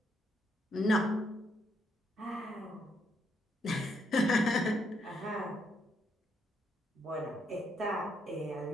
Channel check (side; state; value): both; normal; correlation 0.75